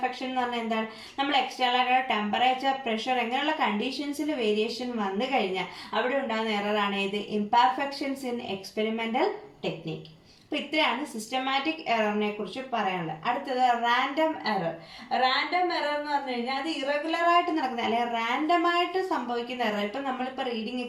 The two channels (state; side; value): identical; both; correlation 1.00